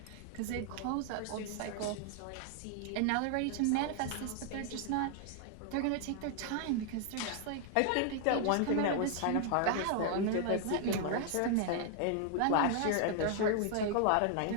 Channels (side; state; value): both; different; correlation 0.00